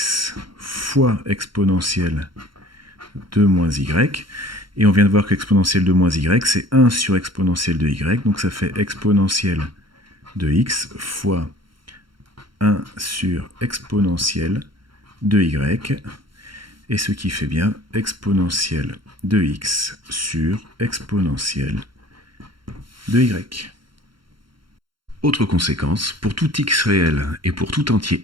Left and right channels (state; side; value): late; left; 0.73 ms